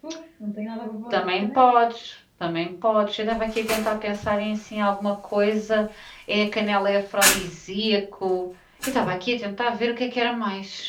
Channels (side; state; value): both; identical; correlation 1.00